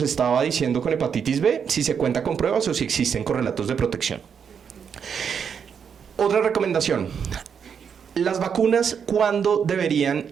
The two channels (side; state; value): left; quieter; 7.1 dB